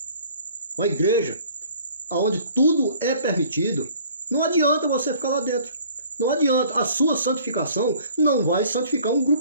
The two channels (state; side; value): inverted; both; correlation -0.53